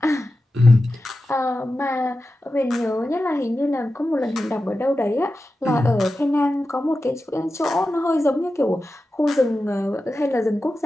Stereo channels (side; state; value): both; normal; correlation 0.93